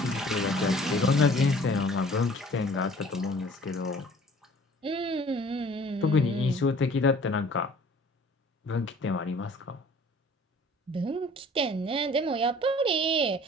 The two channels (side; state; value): both; normal; correlation 0.51